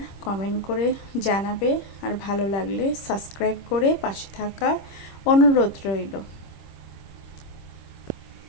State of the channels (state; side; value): late; right; 26 ms